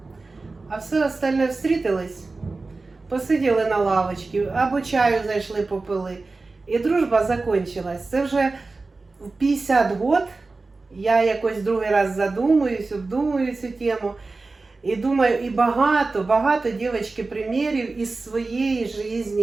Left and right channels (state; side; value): quieter; left; 3.6 dB